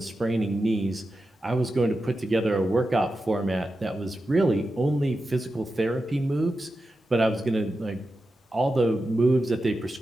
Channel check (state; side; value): normal; both; correlation 0.91